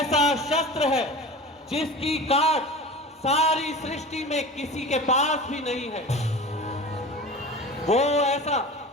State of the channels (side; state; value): both; normal; correlation 0.35